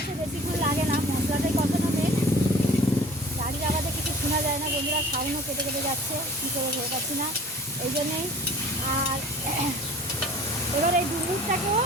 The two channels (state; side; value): normal; both; correlation 0.47